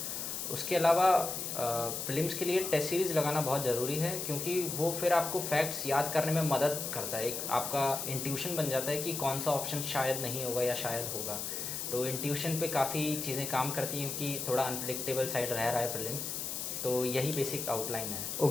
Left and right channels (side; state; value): left; noise; hiss, 4 dB below the sound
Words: उसके अलावा प्रीलिम्स के लिए टेस्ट सीरीज़ लगाना बहुत ज़रूरी है, क्योंकि वो फिर आपको फैक्ट्स याद करने में मदद करता है। एक आपका इंट्यूशन बन जाता है कि कौन सा ऑप्शन शायद नहीं होगा या शायद होगा। तो इंट्यूशन पे काफ़ी चीज़ें काम करती हैं, क्योंकि थोड़ा अनप्रिडिक्टेबल साइड रह रहा है प्रीलिम्स। तो यही बेसिक आउटलाइन है।